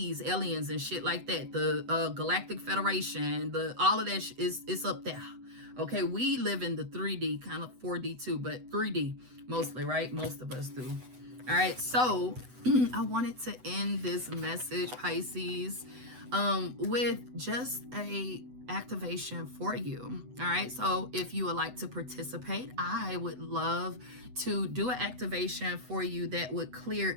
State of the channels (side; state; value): left; late; 8.0 ms